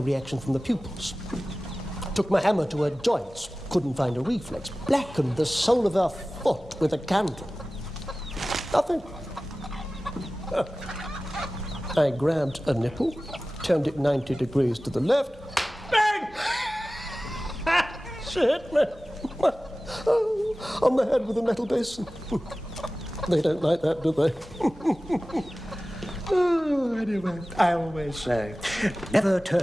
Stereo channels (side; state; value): both; normal; correlation 0.97